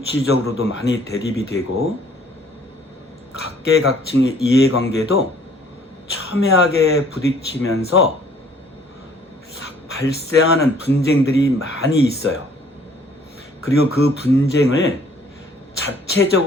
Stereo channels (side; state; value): both; normal; correlation 0.58